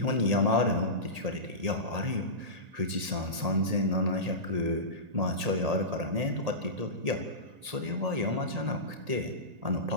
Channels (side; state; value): left; late; 1.8 ms